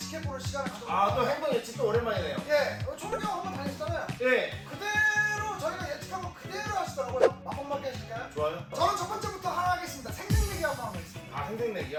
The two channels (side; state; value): both; identical; correlation 1.00